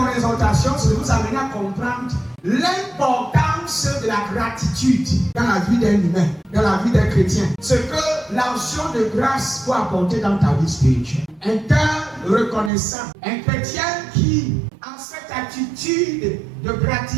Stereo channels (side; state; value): left; drops out; at 12.7 s